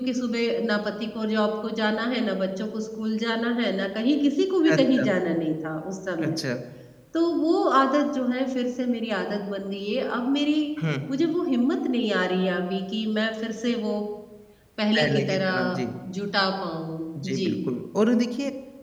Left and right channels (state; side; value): identical; both; correlation 1.00